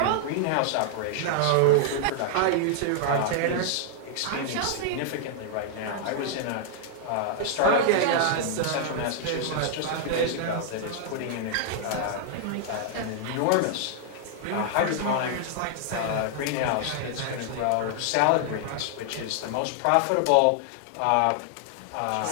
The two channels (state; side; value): different; both; correlation -0.01